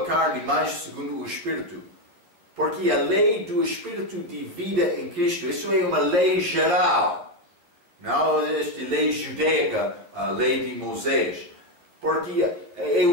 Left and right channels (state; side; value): late; left; 12 ms